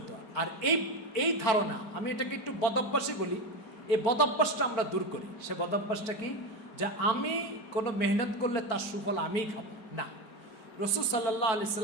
আর এই ধারণা, আমি এটাকে একটু বদভ্যাসই বলি, এই বদভ্যাসটা আমরা দূর করি। সে বদভ্যাসটা কি? যে আমি কোনো মেহনত করলে তার সুফল আমিই খাবো না। রাসূল সাল্লাল্লাহু আলাইহি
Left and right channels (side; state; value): right; late; 4.5 ms